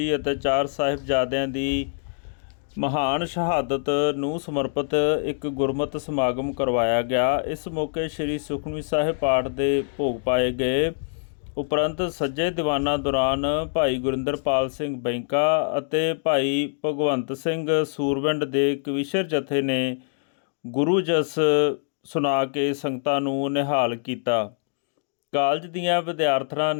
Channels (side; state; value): right; silent; digital silence